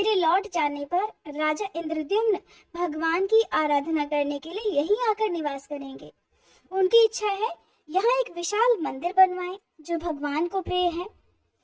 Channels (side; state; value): both; identical; correlation 1.00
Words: लौट जाने पर राजा इंद्रद्युम्न भगवान की आराधना करने के लिए यहीं आकर निवास करेंगे। उनकी इच्छा है यहाँ एक विशाल मंदिर बनवाएं जो भगवान को प्रिय है।